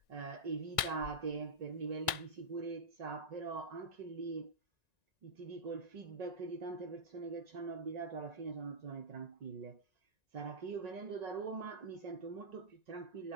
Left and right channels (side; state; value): left; late; 1.9 ms